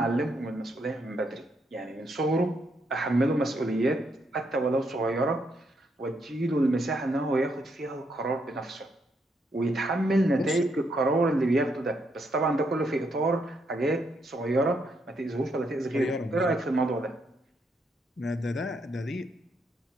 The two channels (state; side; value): normal; both; correlation 0.76